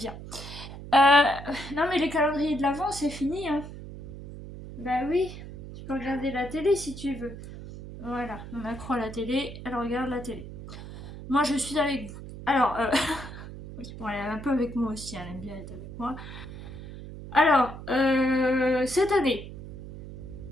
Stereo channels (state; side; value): noise; right; hum, 12 dB below the sound